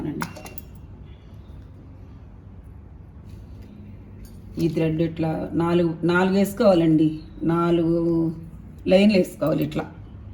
ఈ థ్రెడ్ ఇట్లా నాలుగు వేసుకోవాలండి. 4 లైన్లు వేసుకోవాలి. ఇట్లా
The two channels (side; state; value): both; identical; correlation 1.00